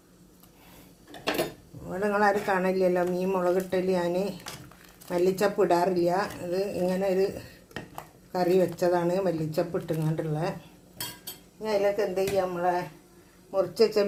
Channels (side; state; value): both; identical; correlation 1.00